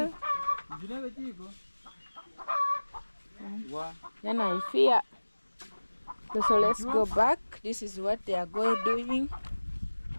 Then I fear. So let's go back. This is what they are doing.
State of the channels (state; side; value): inverted; both; correlation -1.00